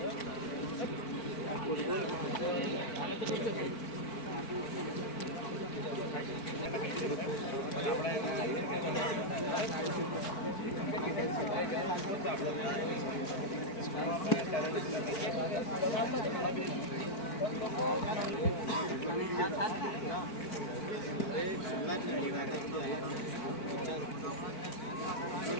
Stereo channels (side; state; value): right; late; 4.5 ms